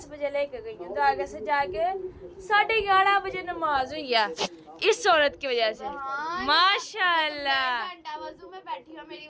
बजे लेके गई हूँ, तो आगे से जाके 11:30 बजे नमाज हुई है इस औरत की वजह से। माशाल्लाह, घंटा वजू में बैठी हो मेरी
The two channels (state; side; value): identical; both; correlation 1.00